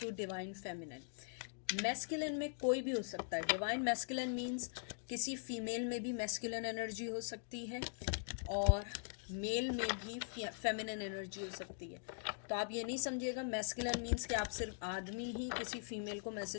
divine feminine. Masculine में कोई भी हो सकता है। डिवाइन मैस्कुलिन मीन्स किसी फीमेल में भी मैस्कुलिन एनर्जी हो सकती है और मेल में भी फेमिनिन एनर्जी हो सकती है। तो आप ये नहीं समझिएगा मैस्कुलिन मीन्स कि आप सिर्फ आदमी ही किसी फीमेल को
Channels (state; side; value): silent; right; digital silence